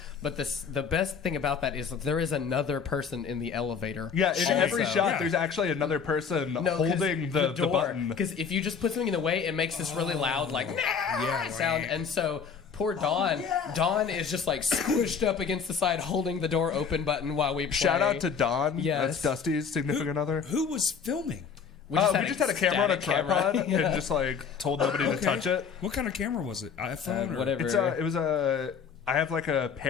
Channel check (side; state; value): right; quieter; 6.4 dB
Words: but the best thing about that is that there is another person in the elevator. Yeah, in every also. shot, Yeah. there's actually another person No, 'cause holding the door. button. Because if you just put something in the way, it makes this really loud like Yeah, sound, right. and so. Poor Dawn. Dawn is just like squished up against the side, holding the door open button while we play. Shout out to Don. Yes. That's Dusty's significant other. Who was filming? We We just had a camera on a static tripod camera. Yeah. and just like told nobody to touch it. What kind of camera was it? iPhone or whatever. It was a. I have like a